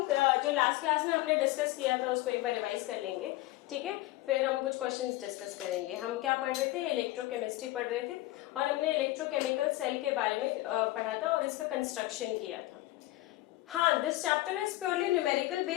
जो लास्ट क्लास में हमने डिस्कस किया था उसको एक बार रिवाइज कर लेंगे, ठीक है। फिर हम कुछ क्वेश्चंस डिस्कस करेंगे। हम क्या पढ़ रहे थे, इलेक्ट्रोकेमिस्ट्री पढ़ रहे थे और हमने इलेक्ट्रोकेमिकल सेल के बारे में पढ़ा था और इसका कंस्ट्रक्शन किया था। हाँ, this chapter is purely numerical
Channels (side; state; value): right; quieter; 17.9 dB